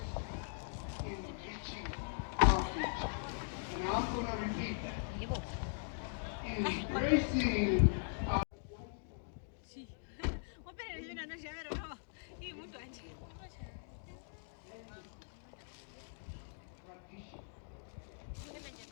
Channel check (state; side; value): silent; right; digital silence